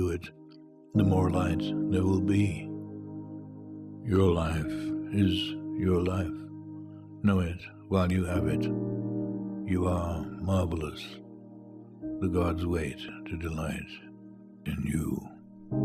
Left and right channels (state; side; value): identical; both; correlation 1.00